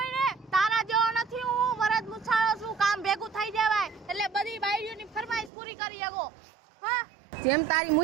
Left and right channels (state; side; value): drops out; left; at 5.5 s